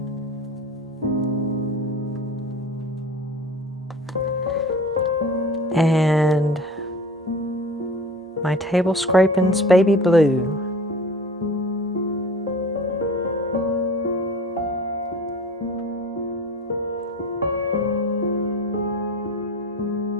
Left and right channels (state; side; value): normal; both; correlation 0.40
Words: and my table scrapings baby blue.